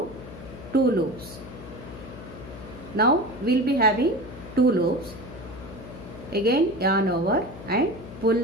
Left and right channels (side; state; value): left; noise; hum, 14 dB below the sound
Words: 2 loops. Now we'll be having 2 loops. Again yarn over and